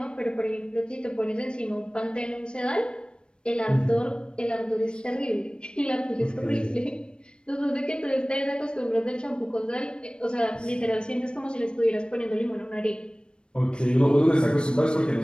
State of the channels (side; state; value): right; late; 0.053 ms